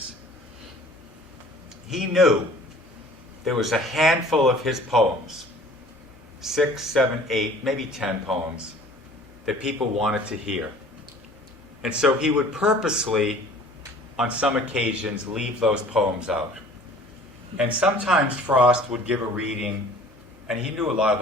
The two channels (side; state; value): both; normal; correlation 0.49